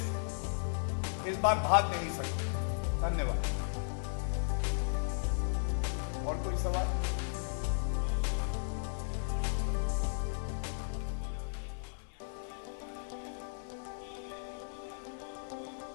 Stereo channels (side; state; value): right; silent; digital silence